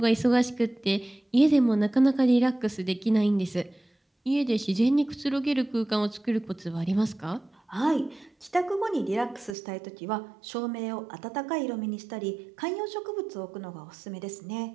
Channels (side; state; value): left; drops out; at 9.6 s